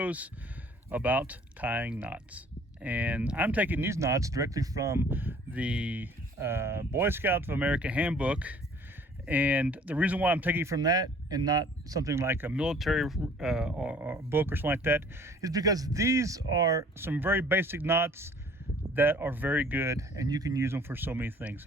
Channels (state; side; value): normal; both; correlation 0.54